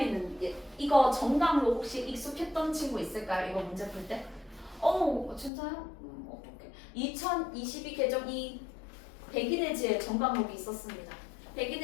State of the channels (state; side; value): drops out; right; at 5.5 s